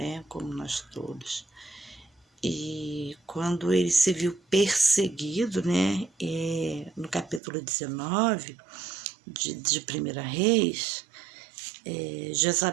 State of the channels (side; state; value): left; drops out; at 7.4 s